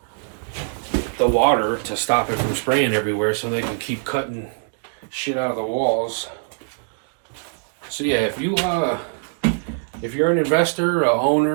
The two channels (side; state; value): left; silent; digital silence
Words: the water to stop it from spraying everywhere, so they can keep cutting shit out of the walls. So yeah, if you're an investor, a